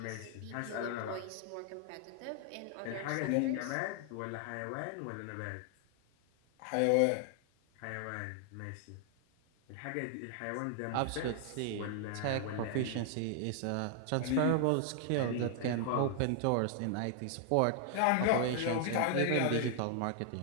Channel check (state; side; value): different; both; correlation 0.00